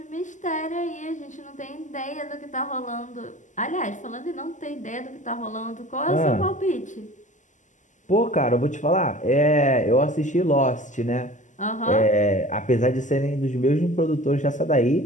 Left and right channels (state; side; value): late; right; 0.36 ms